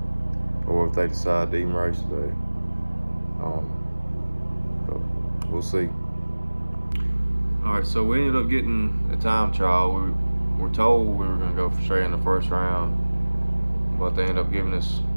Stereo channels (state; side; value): inverted; both; correlation -1.00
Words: or if they decide to even race today. But we'll see. All right, so we ended up getting a time trial. We were told we were gonna go straight in the first round, but they ended up giving